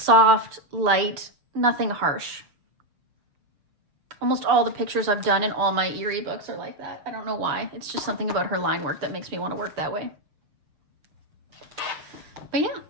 light, nothing harsh. Almost all the pictures I've done in all my Eerie books are like that. I don't know why. It's just something about her line work that makes me want to work that way. But yeah,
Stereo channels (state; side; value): late; left; 6.9 ms